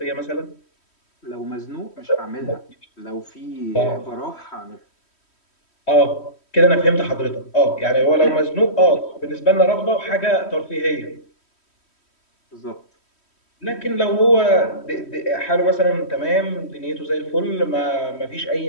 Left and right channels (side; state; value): right; late; 3.1 ms